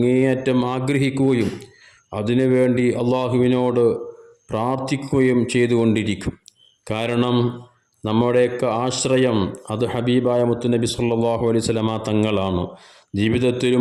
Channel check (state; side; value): identical; both; correlation 1.00